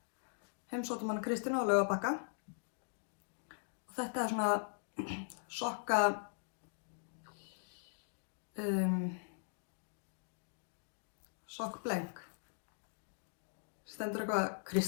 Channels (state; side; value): silent; right; digital silence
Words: heimsóttum hana Kristínu á Laugarbakka. Og þetta er svona sokka sokkbleng. Stendur eitthvað,